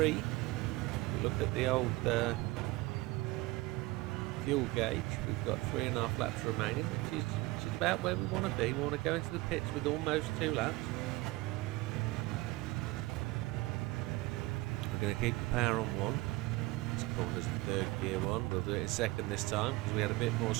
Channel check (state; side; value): quieter; left; 21.1 dB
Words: We look at the old fuel gauge. We've got 3.5 laps remaining, which is about where we want to be. We want to go into the pits with almost 2 laps. We're going to keep the power on 1. This corner's the 3rd gear one. We'll do it in 2nd this time because we had a bit more